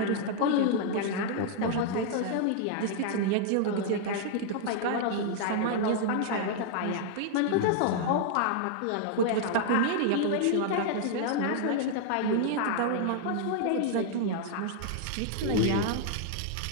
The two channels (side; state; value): both; different; correlation 0.00